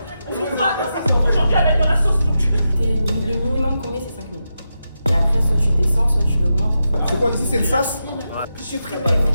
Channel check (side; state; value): both; inverted; correlation -0.88